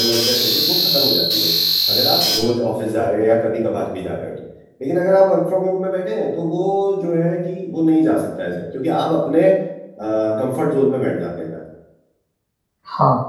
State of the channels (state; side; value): identical; both; correlation 1.00